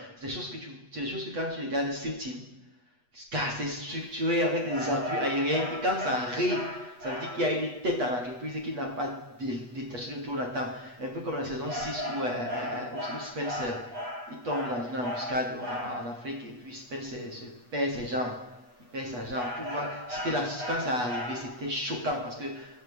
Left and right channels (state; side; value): late; left; 8.2 ms